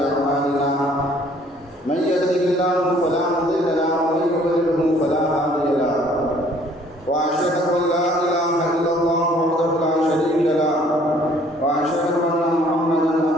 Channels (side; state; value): both; normal; correlation 0.59